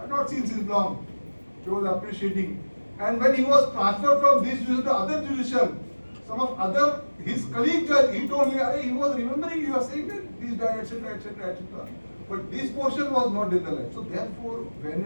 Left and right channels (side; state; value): both; inverted; correlation -1.00